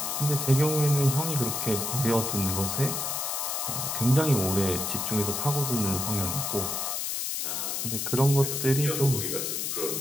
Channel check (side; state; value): left; noise; hiss, 2 dB below the sound